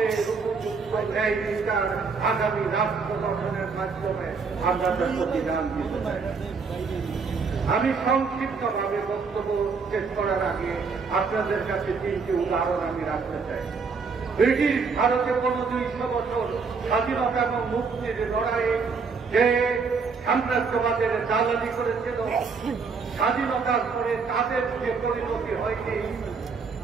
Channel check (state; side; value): quieter; left; 5.0 dB